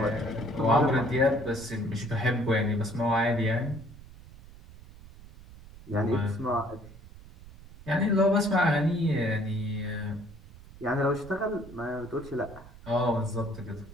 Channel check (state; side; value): noise; right; rumble, 19 dB below the sound